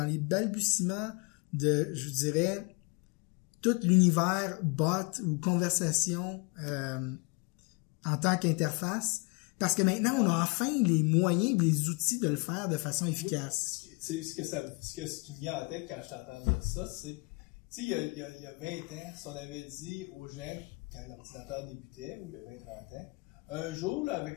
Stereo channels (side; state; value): right; quieter; 29.8 dB